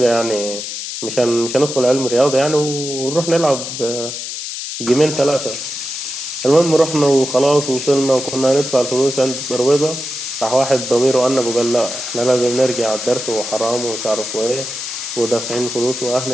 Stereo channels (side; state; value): left; noise; hiss, 6 dB below the sound